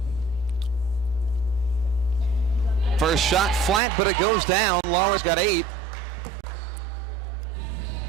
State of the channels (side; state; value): left; drops out; at 3.8 s